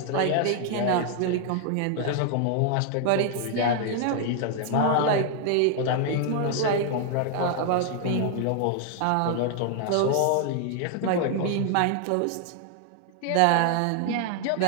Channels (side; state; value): both; different; correlation 0.00